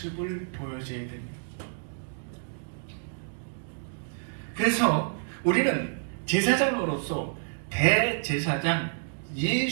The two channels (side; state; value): left; silent; digital silence